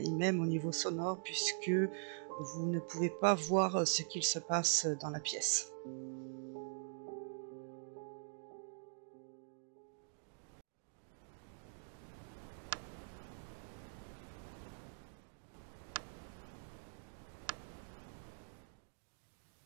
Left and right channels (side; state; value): left; silent; digital silence